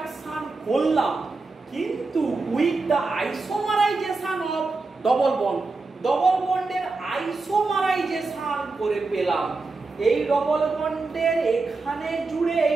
করলাম, কিন্তু with the isomerisation of double bond, double বন্ডের আইসোমারাইজেশন করে পেলাম। এই ডবল বন্ডের এখানে জুড়ে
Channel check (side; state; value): left; quieter; 3.8 dB